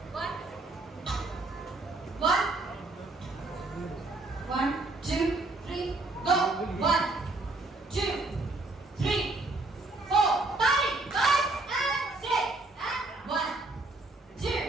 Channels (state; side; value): quieter; left; 3.1 dB